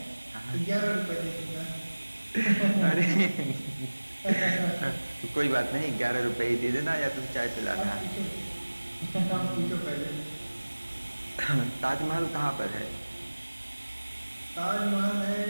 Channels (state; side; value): inverted; both; correlation -1.00